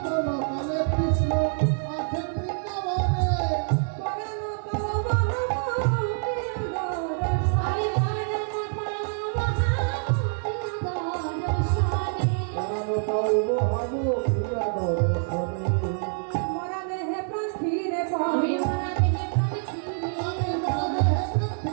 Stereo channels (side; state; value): left; silent; digital silence